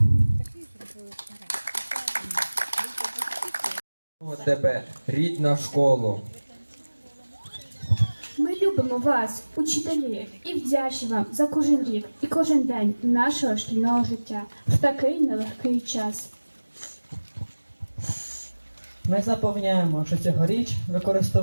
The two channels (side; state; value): both; inverted; correlation -1.00